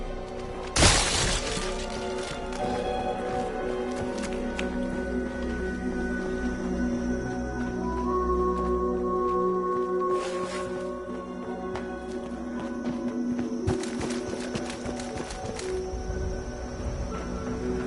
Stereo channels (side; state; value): both; identical; correlation 1.00